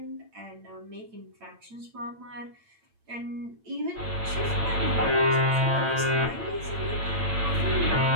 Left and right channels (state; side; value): late; left; 8.8 ms